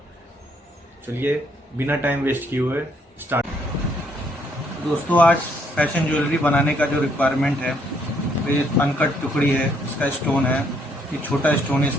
चलिए बिना टाइम वेस्ट किए हुए स्टार्ट। दोस्तों, आज फैशन ज्वेलरी बनाने का जो रिक्वायरमेंट है, तो ये अनकट टुकड़ी है, इसका स्टोन है, ये छोटा स्टोन है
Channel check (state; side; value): normal; both; correlation 0.70